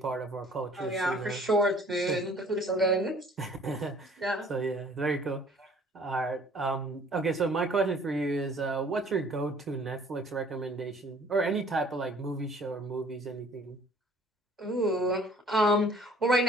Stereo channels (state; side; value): normal; both; correlation 0.55